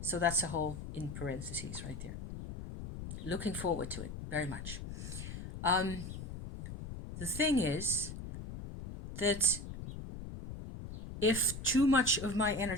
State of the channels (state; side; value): noise; left; rumble, 9 dB below the sound